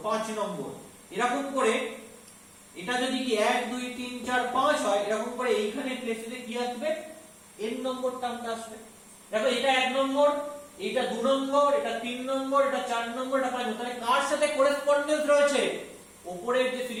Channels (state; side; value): identical; both; correlation 1.00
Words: 5 নম্বর, এরকম করে এটা যদি কি 1 2 3 4 5 হয়, এরকম করে এইখানে প্লেসে কি আসবে? n নম্বর টার্মটা আসবে। দেখো এটা 1 নম্বর, এটা 2 নম্বর, এটা 3 নম্বর, এটা 4 নম্বর, এটা 5 নম্বর। তাহলে কার সাথে করেসপন্ডেন্স রয়েছে? উপরের যে